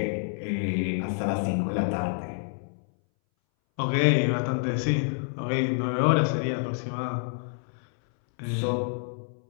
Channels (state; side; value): silent; right; 60 dB below the other